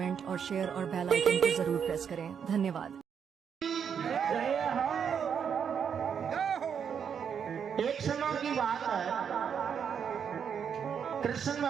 और शेयर और बेल आइकन को जरूर प्रेस करें। धन्यवाद। एक समय की बात है, कृष्ण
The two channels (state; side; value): quieter; left; 7.4 dB